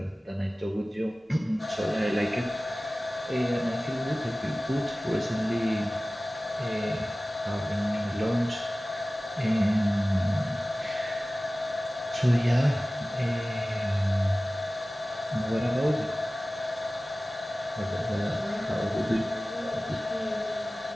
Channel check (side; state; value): both; normal; correlation 0.97